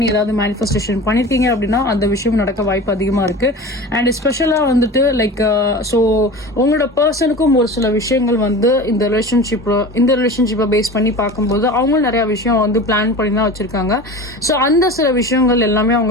ஏதாவது மேனிஃபெஸ்டேஷன் பண்ணியிருக்கீங்க அப்படின்னா அந்த விஷயம் நடக்க வாய்ப்பு அதிகமாக இருக்குது. அண்ட் ஸ்பெஷலாக வந்துட்டு லைக் ஸோ உங்களோட பர்சனுக்கும் ஒரு சில விஷயங்கள் வந்து இந்த ரிலேஷன்ஷிப்பை பேஸ் பண்ணி பார்க்கும்போது அவங்களும் நிறைய விஷயம் வந்து பிளான் பண்ணி தான் வச்சுருக்காங்க. ஸோ அந்த சில விஷயங்கள் எல்லாமே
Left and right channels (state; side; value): normal; both; correlation 0.34